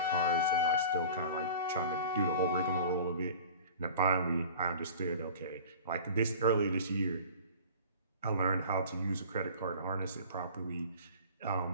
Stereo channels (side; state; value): both; inverted; correlation -0.41